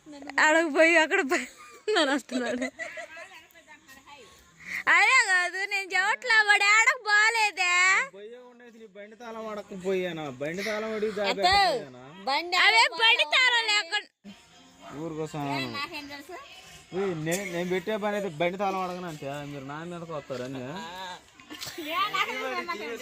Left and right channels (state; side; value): identical; both; correlation 1.00